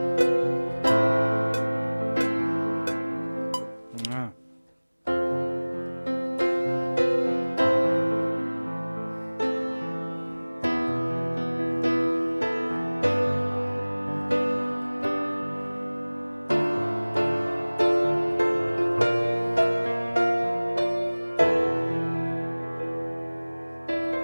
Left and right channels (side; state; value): both; inverted; correlation -1.00